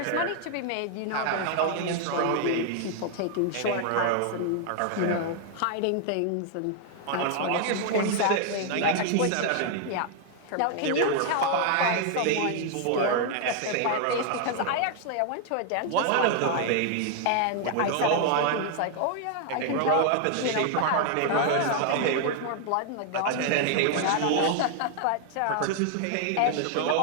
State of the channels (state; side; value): different; both; correlation 0.00